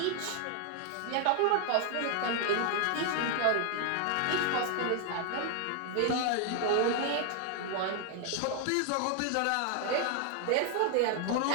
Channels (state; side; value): different; both; correlation 0.00